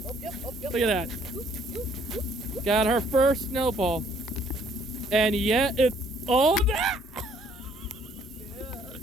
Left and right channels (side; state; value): both; normal; correlation 0.63